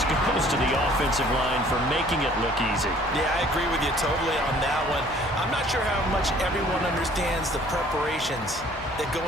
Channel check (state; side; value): normal; both; correlation 0.55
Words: goes to the offensive line for making it look easy. Yeah, I agree with you totally on that one. I'm not sure how much everyone understands the preparations that go